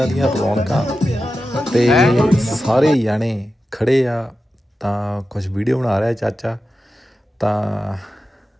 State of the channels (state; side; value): normal; both; correlation 0.92